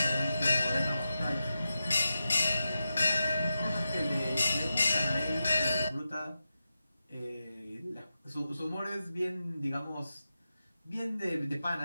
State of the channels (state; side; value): inverted; both; correlation -0.90